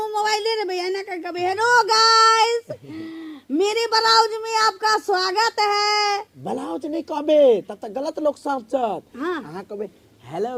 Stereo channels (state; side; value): identical; both; correlation 1.00